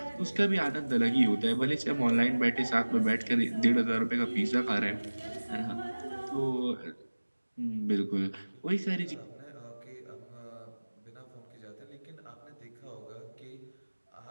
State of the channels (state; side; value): inverted; both; correlation -1.00